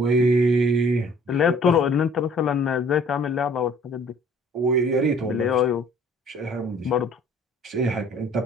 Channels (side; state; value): both; normal; correlation 0.54